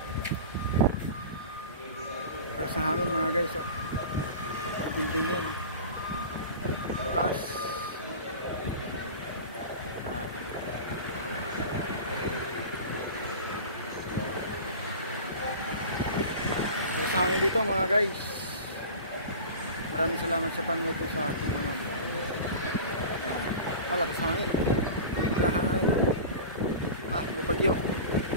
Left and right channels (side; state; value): both; inverted; correlation -0.34